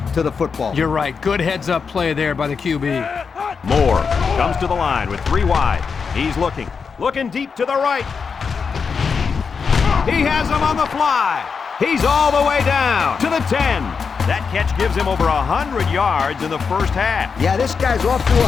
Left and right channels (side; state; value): right; quieter; 5.6 dB